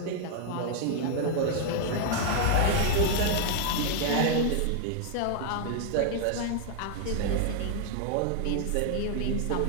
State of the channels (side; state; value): both; different; correlation 0.00